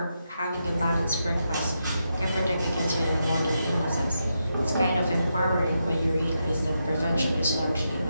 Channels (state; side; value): inverted; both; correlation -0.85